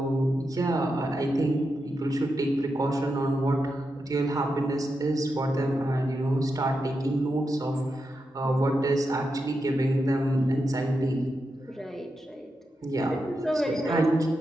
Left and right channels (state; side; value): normal; both; correlation 0.87